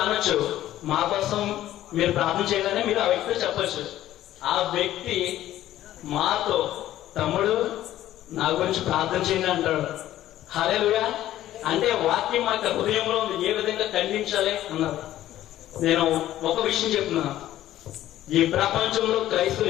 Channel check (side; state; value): right; quieter; 13.4 dB